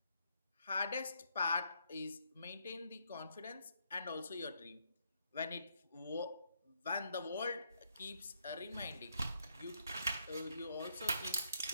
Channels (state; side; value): inverted; both; correlation -0.75